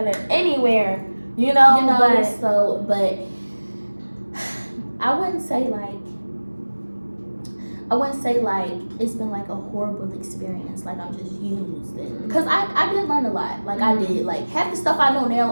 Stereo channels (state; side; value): inverted; both; correlation -1.00